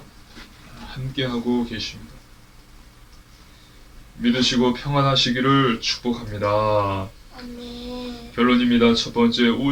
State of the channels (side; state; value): both; identical; correlation 1.00